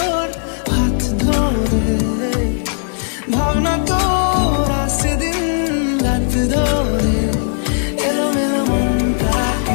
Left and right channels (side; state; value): right; silent; digital silence